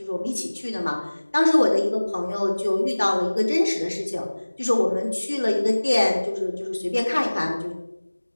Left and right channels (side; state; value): both; inverted; correlation -1.00